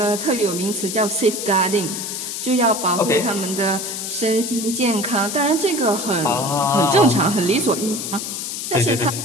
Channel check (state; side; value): noise; left; hiss, 5 dB below the sound